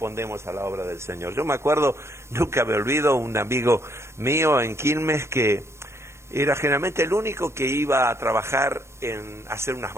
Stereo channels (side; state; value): left; late; 0.13 ms